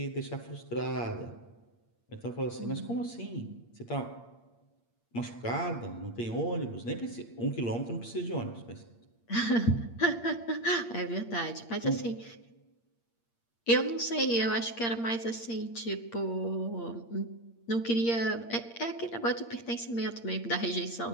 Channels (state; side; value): late; right; 8.6 ms